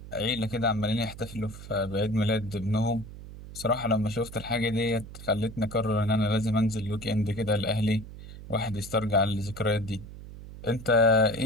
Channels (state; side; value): noise; right; hum, 14 dB below the sound